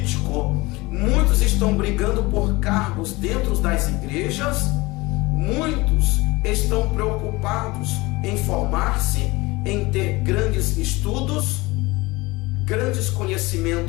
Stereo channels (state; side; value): quieter; right; 22.2 dB